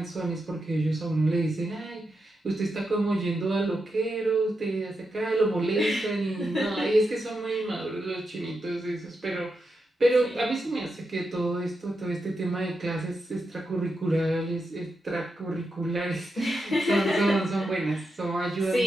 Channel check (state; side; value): normal; both; correlation 0.86